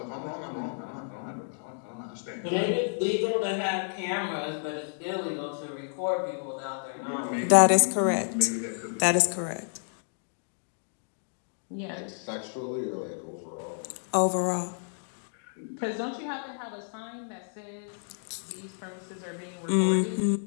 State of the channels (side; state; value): right; silent; digital silence